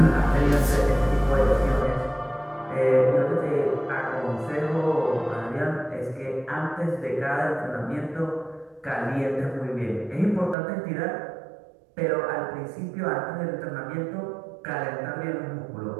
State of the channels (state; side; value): drops out; left; at 10.6 s